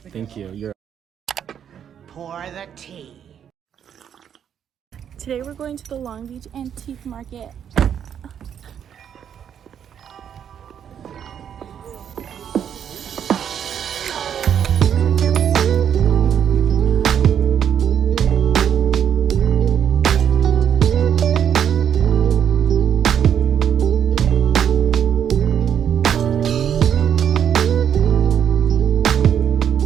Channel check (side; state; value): left; quieter; 8.7 dB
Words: Thank you. You're. Pour the tea. Today we're going to the Long Beach Antique Market.